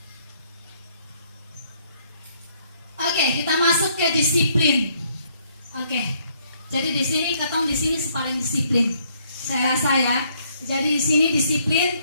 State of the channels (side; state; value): both; inverted; correlation -0.68